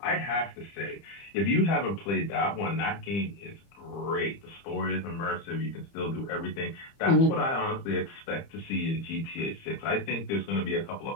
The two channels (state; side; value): late; right; 30 ms